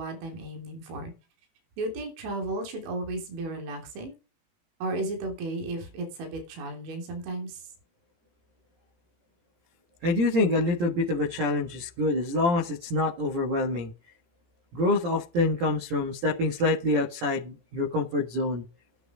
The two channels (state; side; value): late; left; 17 ms